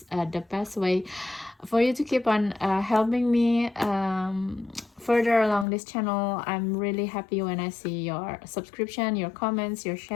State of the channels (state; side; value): drops out; right; at 5.7 s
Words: the best way for you to keep on helping me further along this channel. I'm really happy when I see your subscription, your comments, your